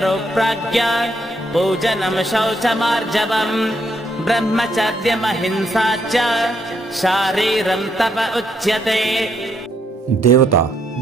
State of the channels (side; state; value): both; normal; correlation 0.74